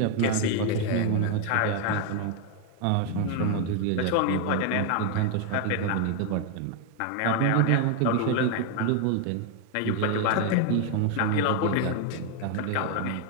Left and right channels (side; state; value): both; different; correlation 0.01